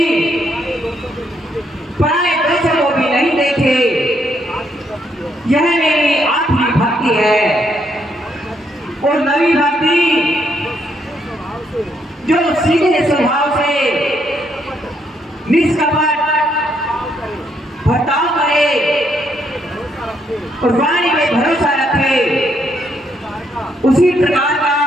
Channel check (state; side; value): normal; both; correlation 0.74